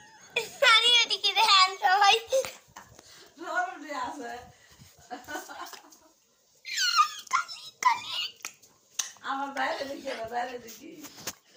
নানি এদিকে দেন সবাই রোডে আছে আমার বাইরে দেখি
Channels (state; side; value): identical; both; correlation 1.00